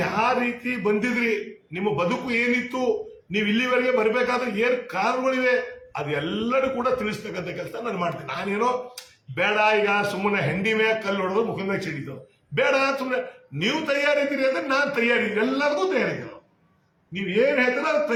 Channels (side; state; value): both; identical; correlation 1.00